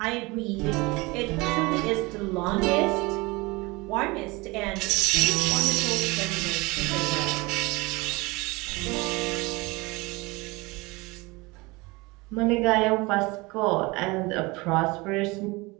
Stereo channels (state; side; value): quieter; left; 24.1 dB